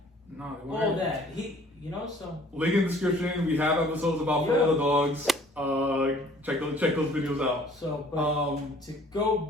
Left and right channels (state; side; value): normal; both; correlation 0.55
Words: all that. So link in the description. We have episodes about For All the Dogs. Check those videos out. So, but to